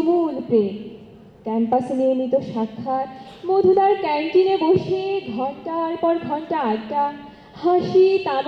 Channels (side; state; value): both; identical; correlation 1.00